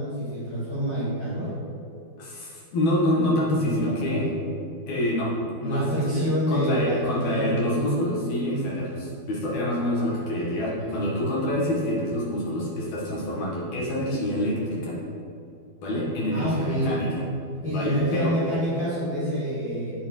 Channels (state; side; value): late; right; 12 ms